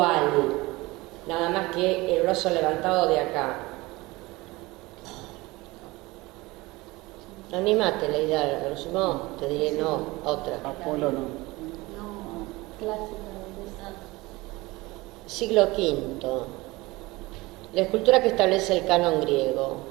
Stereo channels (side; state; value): left; quieter; 21.5 dB